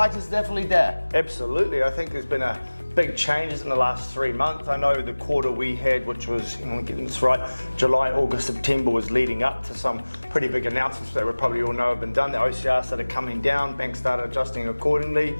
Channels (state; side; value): inverted; both; correlation -1.00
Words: is definitely there. Absolutely. I think there's been a big changes in the last 3 months. I know the quarter we had, which was, getting this right, July, August, September, was leading up to some pretty big announcements that we probably all know have been done. The OCR started coming down, banks started adjusting accordingly,